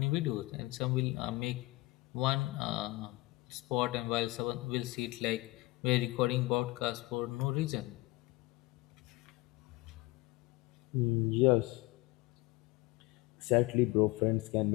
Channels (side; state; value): right; quieter; 21.5 dB